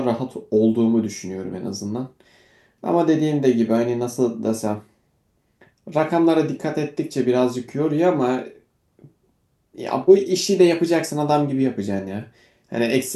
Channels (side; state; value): both; identical; correlation 1.00